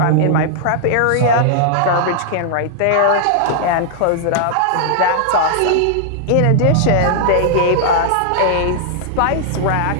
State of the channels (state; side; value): different; both; correlation -0.01